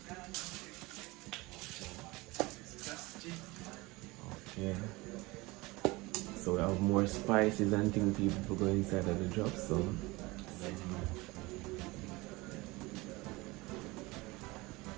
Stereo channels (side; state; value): left; quieter; 22.6 dB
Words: Okay. So we have more spices and things people go inside of the drops, so